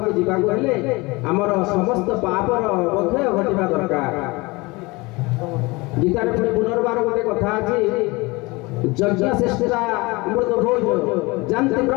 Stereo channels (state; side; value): quieter; right; 24.0 dB